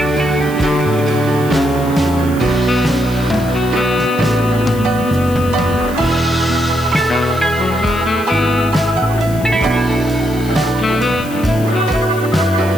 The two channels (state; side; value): noise; left; hiss, 17 dB below the sound